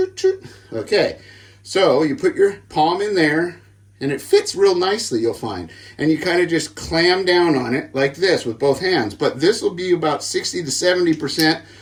Okay, so you put your palm in there, and it fits real nicely, you'll find. And you kind of just clam down on it like this with both hands. But this will be about 60 to 70%.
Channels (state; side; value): identical; both; correlation 1.00